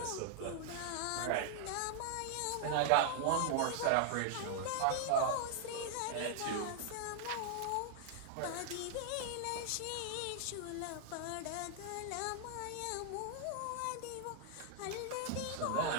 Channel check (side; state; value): both; different; correlation 0.00